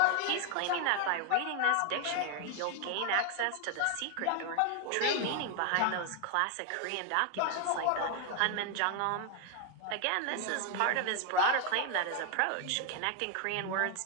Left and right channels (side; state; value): both; different; correlation 0.00